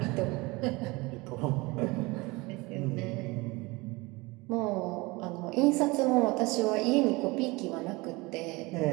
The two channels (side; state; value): left; quieter; 23.8 dB